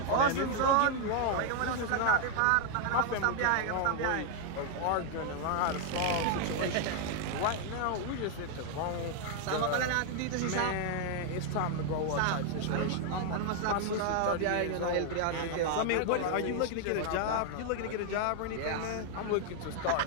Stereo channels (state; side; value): different; both; correlation 0.00